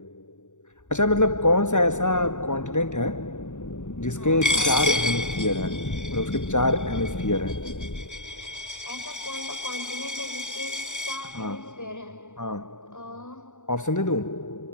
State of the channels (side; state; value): right; late; 0.85 ms